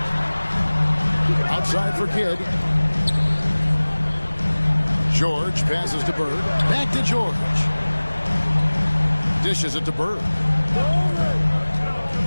Outside for Kidd. George passes to Bird. Back to George. Dishes it to Bird.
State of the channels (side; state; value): both; inverted; correlation -1.00